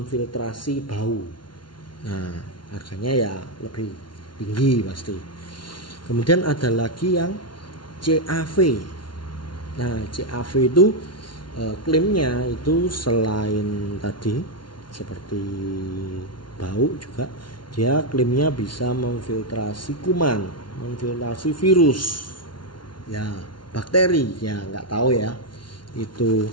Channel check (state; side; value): late; right; 0.71 ms